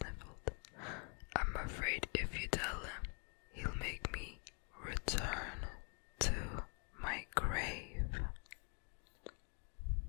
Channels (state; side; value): quieter; right; 37.9 dB